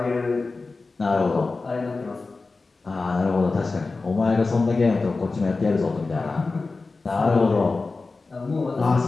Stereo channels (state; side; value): quieter; right; 3.8 dB